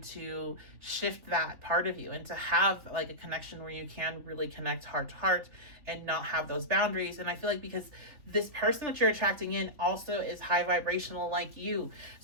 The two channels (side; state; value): left; late; 3.6 ms